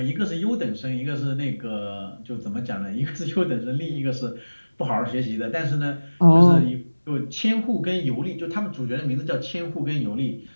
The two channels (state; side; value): inverted; both; correlation -1.00